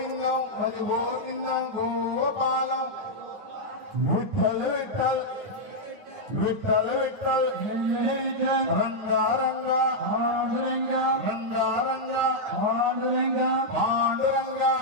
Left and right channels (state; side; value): late; left; 9.7 ms